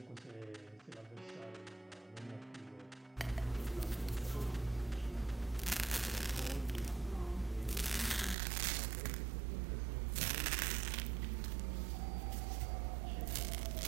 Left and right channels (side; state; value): left; drops out; at 8.3 s